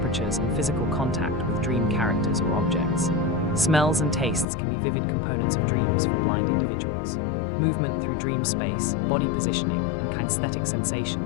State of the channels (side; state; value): right; drops out; at 4.5 s